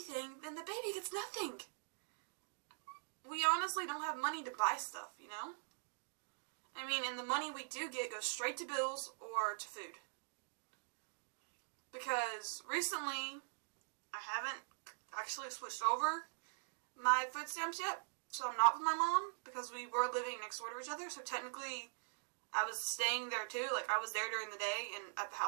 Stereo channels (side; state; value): left; silent; digital silence